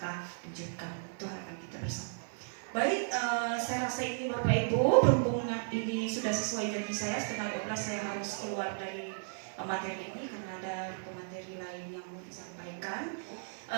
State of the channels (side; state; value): left; silent; 55 dB below the other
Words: wujudkan, itu harapan kita bersama. Baik, saya rasa ini Bapak Ibu, berhubung ini sudah sesuai janji saya, setengah 12 saya harus keluar dari materi ini karena ada pemateri lain yang mau disampaikan.